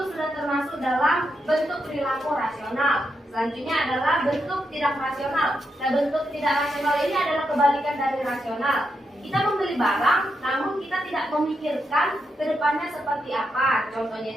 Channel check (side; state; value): both; normal; correlation 0.83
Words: sudah termasuk dalam bentuk perilaku rasional. Selanjutnya adalah bentuk tidak rasional. Nah, bentuk tidak rasional ini adalah kebalikan dari rasional. Kita membeli barang, namun kita tidak memikirkan ke depannya seperti apa.